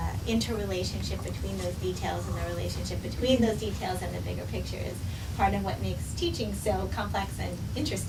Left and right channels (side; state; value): both; identical; correlation 1.00